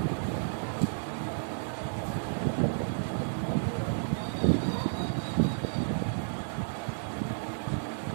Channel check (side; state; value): left; silent; digital silence